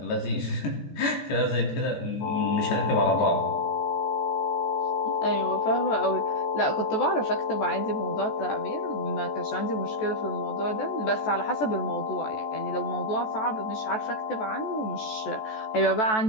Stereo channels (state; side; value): late; right; 14 ms